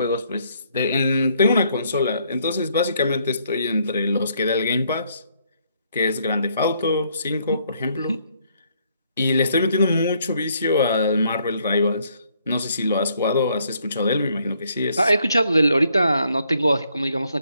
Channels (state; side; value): inverted; both; correlation -0.70